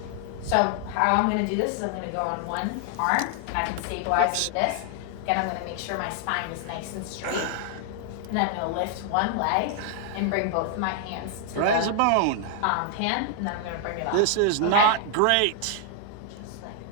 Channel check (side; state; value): both; different; correlation 0.00